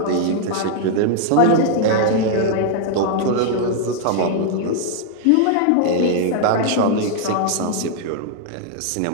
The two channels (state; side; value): different; both; correlation 0.00